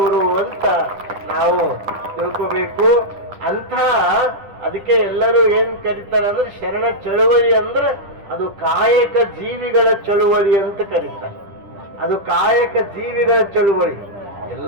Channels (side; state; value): left; late; 10 ms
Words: ಅಂತ ನಾವು ತಿಳ್ಕೋಬೇಕು. ಅಂಥ ಅದಕ್ಕೆ ಎಲ್ಲರೂ ಏನ್ ಕರೀತಾರೆ ಅಂದ್ರೆ ಶರಣ ಚಳುವಳಿ ಅಂದ್ರೆ ಅದು ಕಾಯಕ ಜೀವಿಗಳ ಚಳುವಳಿ ಅಂತ ಕರೀತಾರೆ. ಅದು ಕಾಯಕ ಜೀವಿಗಳ ಚಳುವಳಿ.